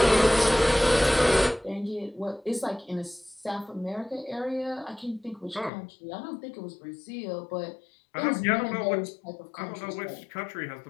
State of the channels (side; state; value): right; drops out; at 5.7 s